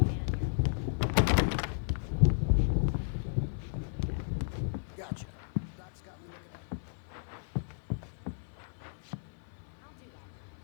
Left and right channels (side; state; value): right; silent; 55 dB below the other